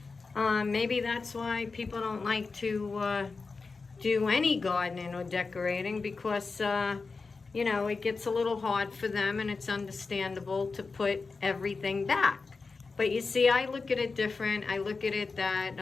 maybe that's why people don't like to do any gardening or decorating, because, it gets a little hard for them, and it's understandable to put everything back. But you see, I look at it different. I look at it that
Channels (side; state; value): right; quieter; 4.3 dB